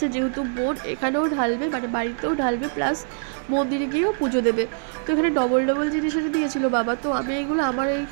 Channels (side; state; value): left; silent; 63 dB below the other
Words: যেহেতু বোন এখানেও ঢালবে, মানে বাড়িতেও ঢালবে, প্লাস মন্দিরে গিয়েও পুজো দেবে। তো এখানে ডবল ডবল জিনিস এনে দিয়েছিল বাবা। তো আমি এইগুলো আমার